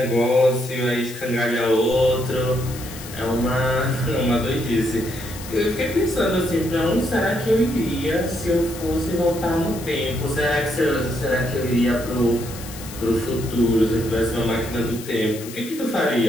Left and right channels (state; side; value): noise; left; hiss, 14 dB below the sound